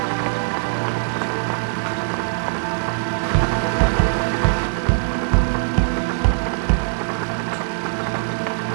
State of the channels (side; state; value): left; silent; 59 dB below the other